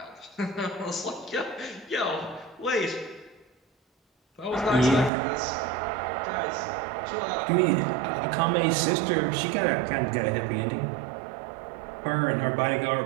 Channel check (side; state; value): left; drops out; at 5.1 s